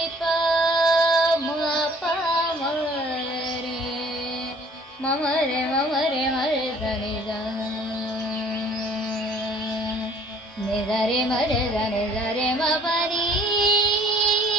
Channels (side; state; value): both; normal; correlation 0.54